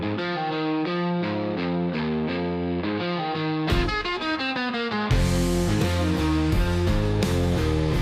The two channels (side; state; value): both; identical; correlation 1.00